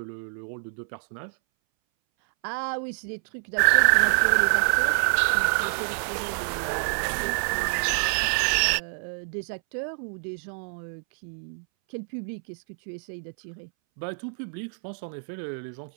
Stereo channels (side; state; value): left; silent; 61 dB below the other